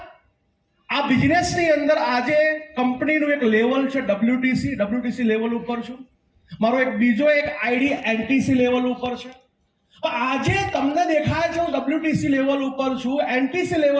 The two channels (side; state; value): both; identical; correlation 1.00